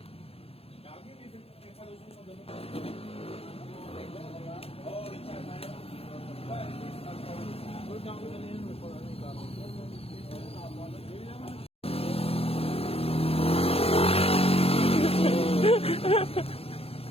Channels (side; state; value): right; late; 0.28 ms